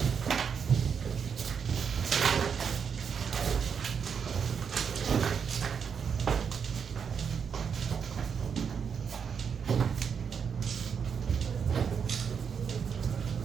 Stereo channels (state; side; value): quieter; left; 6.8 dB